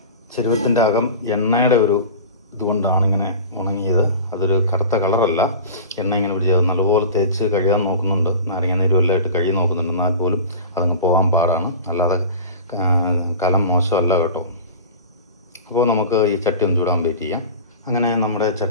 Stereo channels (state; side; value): inverted; both; correlation -0.34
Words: ചെരുവത്തിൻ്റെ അകം എണ്ണയുടെ ഒരു ഇതുകൊണ്ടാണ് ഇങ്ങനെ ഉണങ്ങിയത്. അതൊരു കറുത്ത കളറല്ല, എണ്ണ ഇങ്ങനെ പിടിച്ചത്. നല്ലപോലെ തേച്ച് കഴുകാൻ നോക്കുന്നുണ്ട്, നാരങ്ങ നീരും എല്ലാം ഇട്ട് കഴുകി നോക്കുന്നുണ്ട്. എന്നാൽ പോലും അതങ്ങ് പോകാൻ പാടാണ്. അല്ലാതെ കലം മോശമല്ല കേട്ടോ. അപ്പോൾ നമുക്ക് ഈ ചട്ടി ഒന്ന് ചൂടാൻ വെയിറ്റ് ചെയ്യാം. അങ്ങനെ നമ്മുടെ